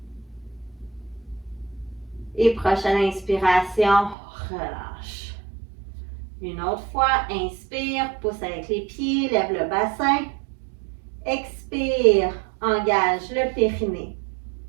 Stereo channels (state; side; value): drops out; left; at 4.2 s